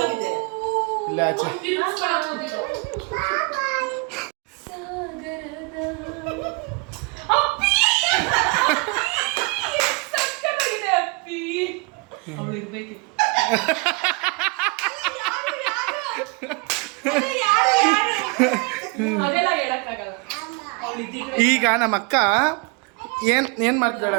ಇಲ್ಲ ಆಚೆ ಈಗ ನಮ್ಮ ಅಕ್ಕ ಏನ್ ಮಾಡ್ತಿದ್ದಾಳೆ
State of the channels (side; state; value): left; quieter; 29.5 dB